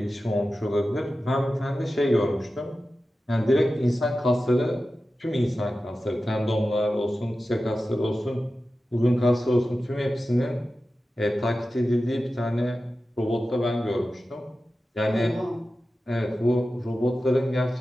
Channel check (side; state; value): both; normal; correlation 0.93